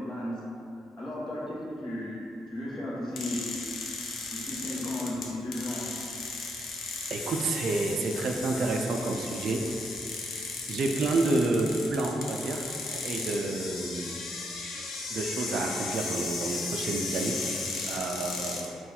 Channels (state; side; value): normal; both; correlation 0.75